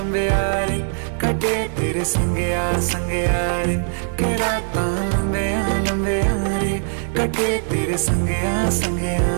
रे, कटे तेरे संगया संगया रे। के राता लंबिया लंबिया रे, कटे तेरे संगया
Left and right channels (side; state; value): left; silent; 65 dB below the other